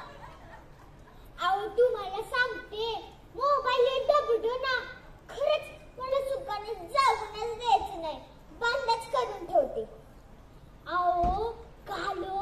अहो तुम्हाला सांगते, मोबाईल डबडो ना. खरंच मला सुखाने जाऊनच द्यायचं नाही. बंदच करून ठेवते. अहो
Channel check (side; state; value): both; identical; correlation 1.00